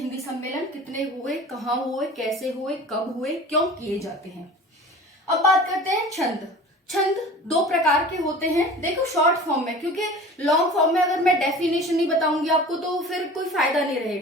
सम्मेलन कितने हुए, कहाँ हुए, कैसे हुए, कब हुए, क्यों किए जाते हैं। अब बात करते हैं छंद। छंद 2 प्रकार के होते हैं। देखो शॉर्ट फॉर्म में, क्योंकि लॉन्ग फॉर्म में अगर मैं डेफिनेशन नहीं बताऊंगी आपको तो फिर कोई फायदा नहीं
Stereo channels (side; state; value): both; normal; correlation 0.40